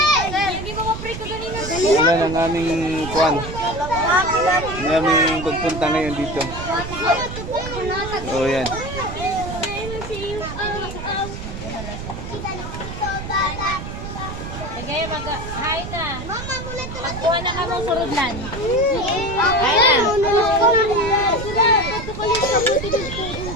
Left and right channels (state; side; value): noise; right; rumble, 8 dB below the sound